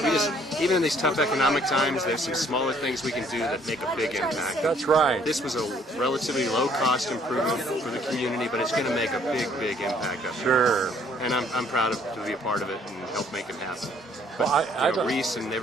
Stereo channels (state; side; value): normal; both; correlation 0.62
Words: Even in these tough economic times, there's some smaller things we can do that make a big impact. That's right. This was a relatively low-cost improvement for the community, but it's going to make a big impact up here. Sure. And I'm proud to be a part of it and help make it happen. But Well, I don't- Reese and